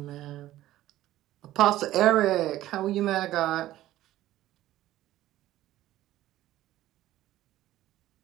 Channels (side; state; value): left; quieter; 14.6 dB